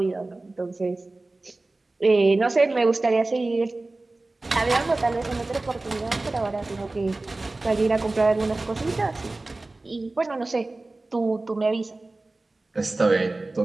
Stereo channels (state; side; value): quieter; left; 3.1 dB